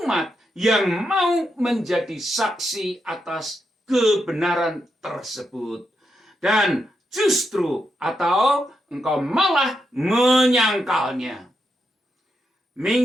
yang mau menjadi saksi atas kebenaran tersebut, dan justru atau engkau malah menyangkalnya?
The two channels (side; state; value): both; normal; correlation 0.83